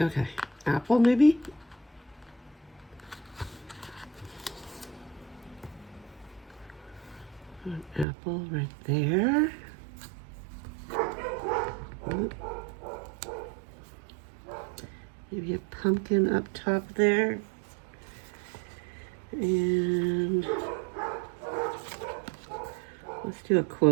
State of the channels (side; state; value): left; drops out; at 8.1 s